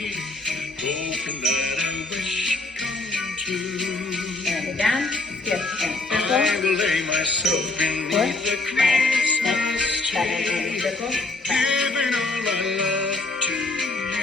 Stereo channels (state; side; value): quieter; right; 3.1 dB